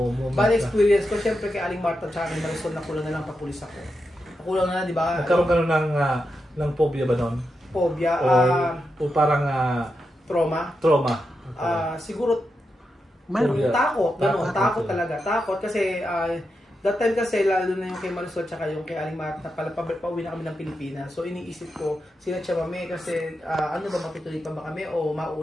Bad experience ko, siyempre kay Aling Marta at kay Marisol, nakulang na lang papulis ako. Nakulang na, di ba? Nagkaroon ka ng phobia ba nun? Phobia. O parang trauma. Siguro, takot. Takot talaga. Takot kasi that time kasi lalo na yung kay Marisol tsaka yung kay Aling Marta, pauwi na kami ng Pilipinas. So iniisip ko, sila siya mami kasi ano ba, matutuloy pa ba kami o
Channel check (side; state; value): both; normal; correlation 0.87